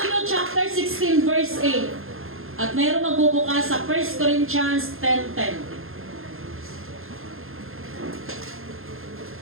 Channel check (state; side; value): late; left; 0.61 ms